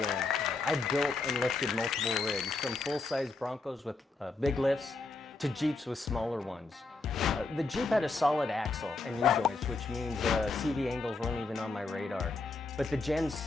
I built and lifted multiple rigs, from full-size Broncos with big lifts to Jeeps with smaller ones. The Jeep had a solid axle and U-joints, which means CV angles weren't even on my radar. But the Gen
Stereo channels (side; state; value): right; quieter; 3.7 dB